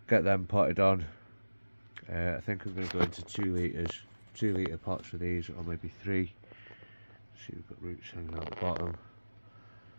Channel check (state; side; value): inverted; both; correlation -1.00